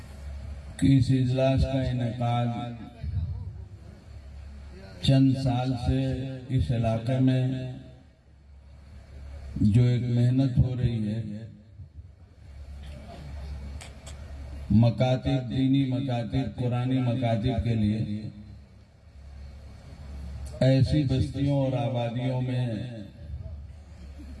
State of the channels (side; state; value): both; identical; correlation 1.00